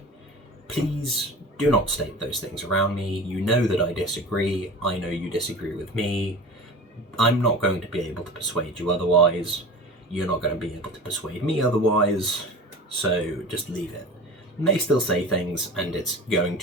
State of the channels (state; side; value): normal; both; correlation 0.36